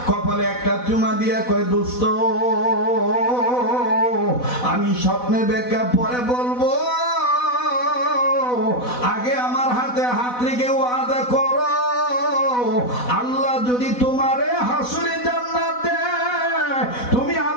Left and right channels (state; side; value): late; right; 4.1 ms